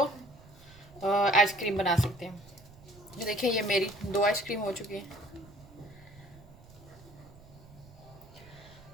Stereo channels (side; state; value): right; noise; rumble, 22 dB below the sound